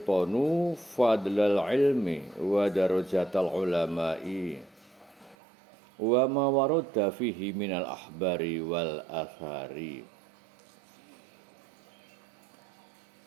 fadlal ilmi wa darajatal ulama'i wa ma warada fihi minal ahbari wal athari.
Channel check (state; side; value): drops out; left; at 5.4 s